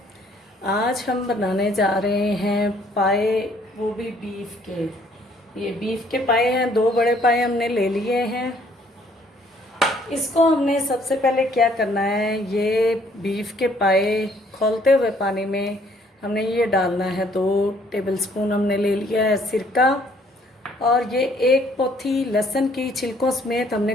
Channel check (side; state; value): both; normal; correlation 0.63